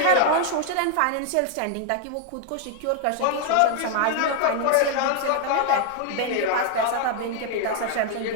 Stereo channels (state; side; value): different; both; correlation 0.00